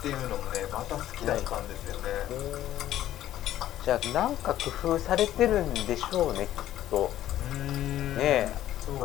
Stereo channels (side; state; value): right; quieter; 12.9 dB